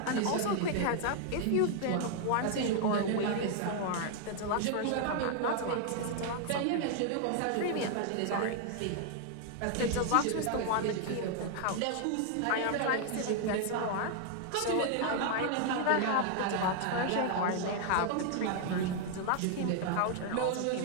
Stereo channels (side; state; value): both; different; correlation 0.00